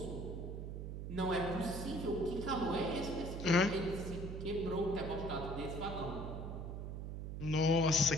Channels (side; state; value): right; noise; hum, 6 dB below the sound